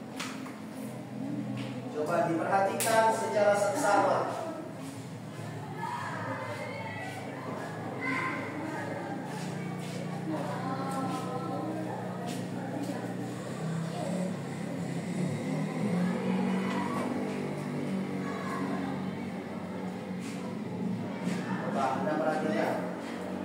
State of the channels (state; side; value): identical; both; correlation 1.00